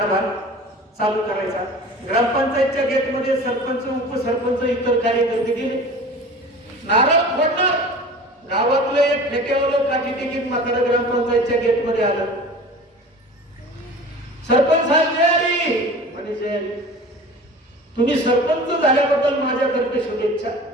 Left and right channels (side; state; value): both; normal; correlation 0.39